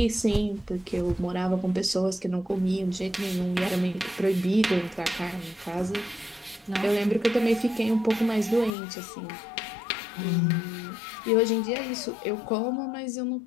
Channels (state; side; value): drops out; right; at 8.7 s